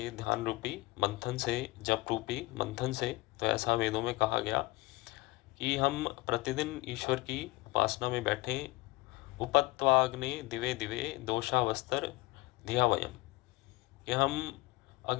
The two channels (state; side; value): quieter; right; 21.0 dB